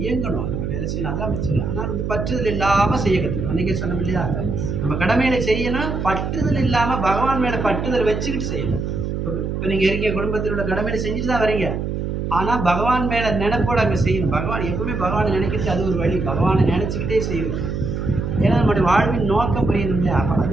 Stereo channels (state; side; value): noise; right; hum, 3 dB below the sound